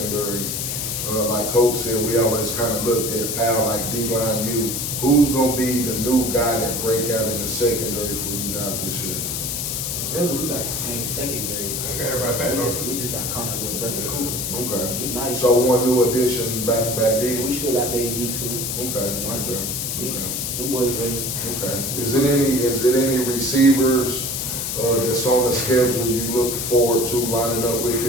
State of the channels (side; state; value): left; noise; hiss, 2 dB below the sound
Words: Like Coach said, we always kind of looked at Powell like D-line you. Who's going to be the new guy that break out in the secondary for you guys this year? Really, we got the same secondary. Okay, everybody back on. We just got Connor with Brother Cooper. Okay. He nice. So one new addition back D. We still got Baby D too. Okay. Marcus. Okay. Them boys ready. Okay. Is it any receivers that's on the schedule you look forward to lining up with